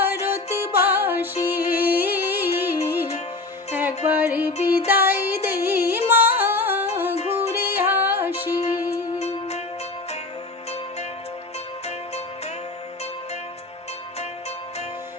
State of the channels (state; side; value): quieter; right; 3.3 dB